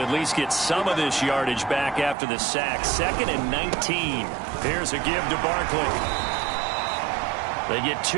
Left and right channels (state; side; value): drops out; left; at 2.1 s